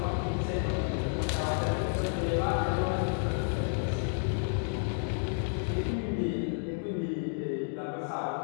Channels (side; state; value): right; silent; digital silence